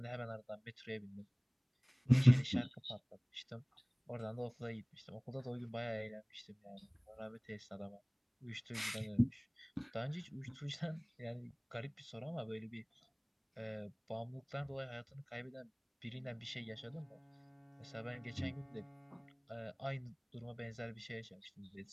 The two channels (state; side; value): identical; both; correlation 1.00